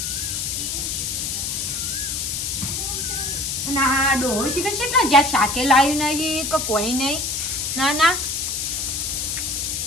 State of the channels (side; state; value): left; noise; hiss, 2 dB below the sound